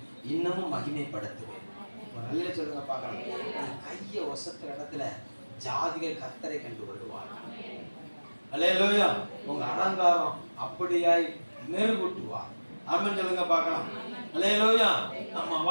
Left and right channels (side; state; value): both; inverted; correlation -1.00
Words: இன்னமும் மகிமைப்படுத்துவேன். நல்ல சொல்லுங்க பார்க்கலாம். கையை ஒசத்துற இடத்துல ஜாதிகள் கர்த்தரை கண்டு கொள்வார்கள். அல்லேலூயா. உங்க அலங்காரம் அப்படியாய் மெருகூட்டுவார். ஆமென் சொல்லுங்க பார்க்கலாம். அல்லேலூயா. நம்ம